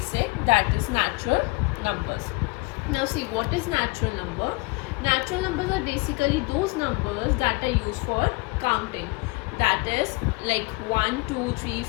that is natural numbers. Now see, what is natural number? Natural numbers are basically those numbers that are used for counting, that is like 1, 2, 3,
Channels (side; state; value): right; quieter; 26.7 dB